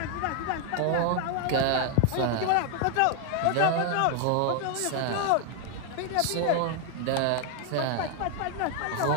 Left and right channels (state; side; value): different; both; correlation 0.00